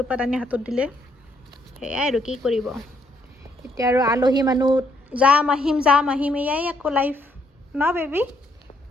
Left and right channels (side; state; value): both; normal; correlation 0.72